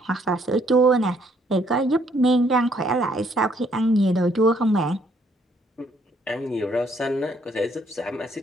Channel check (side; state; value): both; normal; correlation 0.67